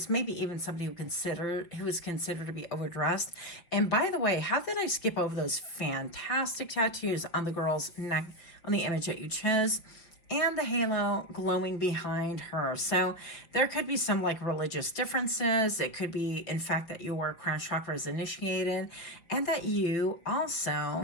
maybe even somebody who is considered to be overdressed. And by the way, how did I skip over those fantastic tattoos on the girl's neck, on the image that you chose? And the halo glowing behind her. So there could be some like religious differences. It could be, in fact, that your crown chakra is initiated, and that you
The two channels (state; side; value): late; right; 5.5 ms